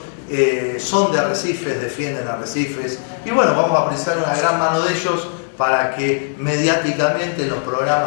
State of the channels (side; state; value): right; silent; digital silence